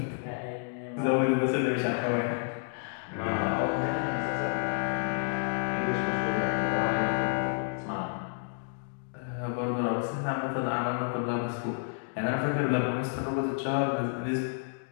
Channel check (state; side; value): silent; right; digital silence